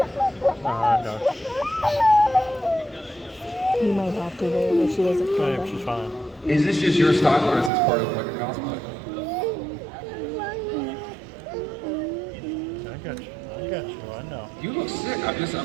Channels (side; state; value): left; drops out; at 7.7 s